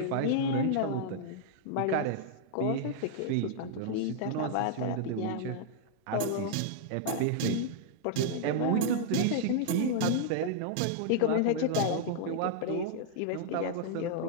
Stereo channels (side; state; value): both; different; correlation -0.01